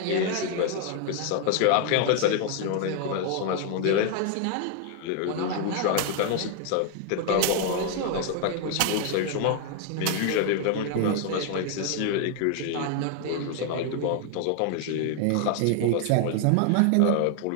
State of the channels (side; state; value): both; different; correlation 0.00